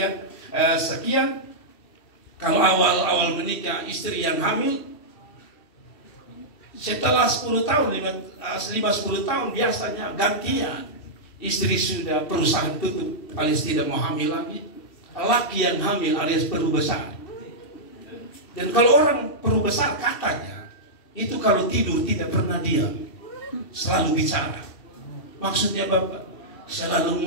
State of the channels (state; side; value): late; right; 2.7 ms